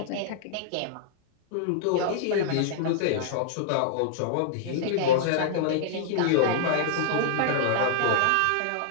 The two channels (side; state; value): both; different; correlation -0.01